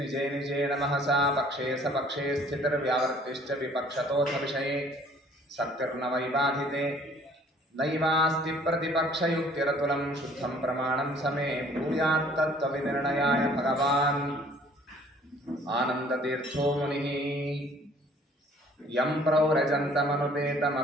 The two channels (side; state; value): both; normal; correlation 0.56